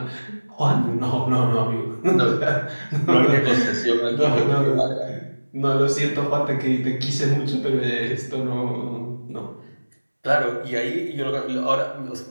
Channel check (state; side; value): inverted; both; correlation -1.00